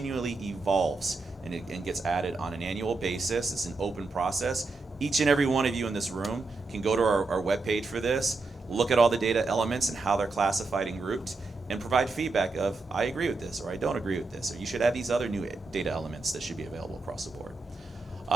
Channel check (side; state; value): left; quieter; 3.6 dB